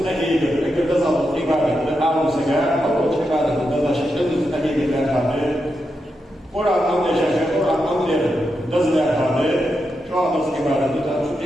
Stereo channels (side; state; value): both; normal; correlation 0.86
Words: إذا تزال إقامة عالم سجار أو شكارة تزال شيء إذا استهيد لا هذا ورا أمر شيء ورا أمر تزال هذا شو هذا إقامة